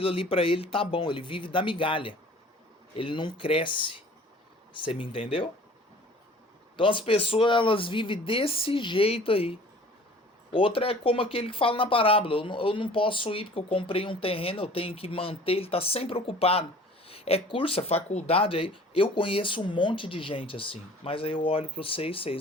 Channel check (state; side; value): normal; both; correlation 0.48